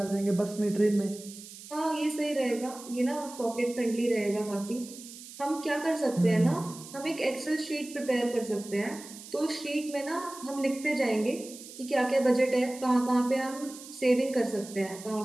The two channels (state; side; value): noise; right; hiss, 15 dB below the sound